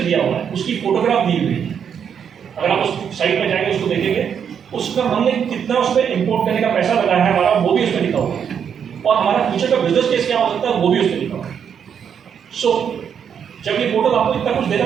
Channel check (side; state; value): left; quieter; 7.7 dB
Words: दिया हुआ है, उसकी फोटोग्राफ दी हुई है। अगर आप उस साइट पर जाएंगे उसको देखेंगे, उसका हमने कितना उस पर इंपोर्ट करने का पैसा लगाया है हमारा, वो भी उसमें लिखा हुआ है और हमारा फ्यूचर का बिजनेस केस क्या हो सकता है वो भी उसमें लिखा हुआ है। सो जब ये पोर्टल आपको इतना कुछ देगा